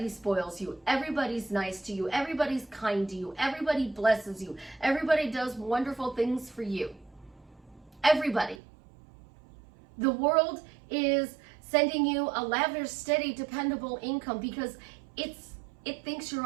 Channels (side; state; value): left; drops out; at 8.6 s